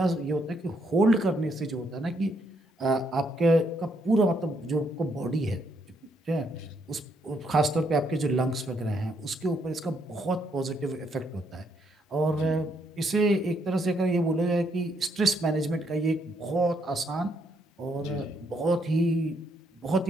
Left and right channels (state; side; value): normal; both; correlation 0.74